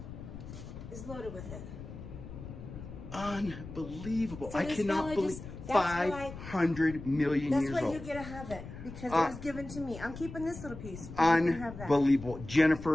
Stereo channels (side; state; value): left; noise; rumble, 12 dB below the sound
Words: is loaded with it. Unbelievable. So I cannot believe 500 million years old. That's why you get to have it, because it was given to me. I'm keeping this little piece. You can have that. Unbelievable.